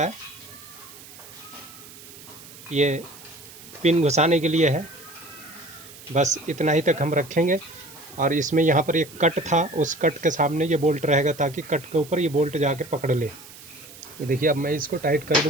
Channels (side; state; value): right; noise; hiss, 18 dB below the sound